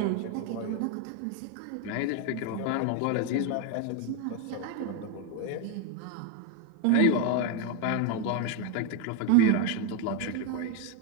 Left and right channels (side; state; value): both; different; correlation 0.02